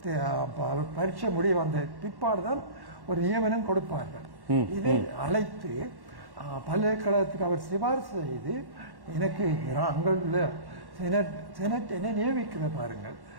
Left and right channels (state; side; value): late; left; 1.1 ms